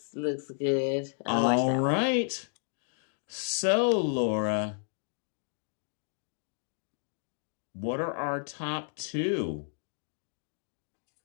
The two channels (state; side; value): silent; right; digital silence